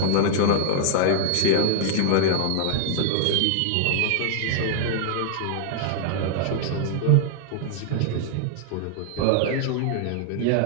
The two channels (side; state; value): both; different; correlation 0.00